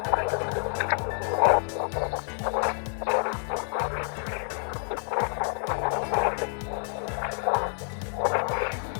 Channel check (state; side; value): silent; right; 59 dB below the other